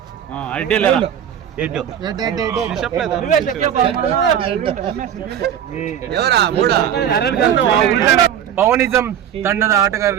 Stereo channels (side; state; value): left; quieter; 9.5 dB